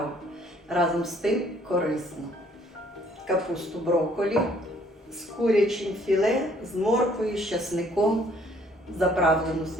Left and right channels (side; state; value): both; normal; correlation 0.62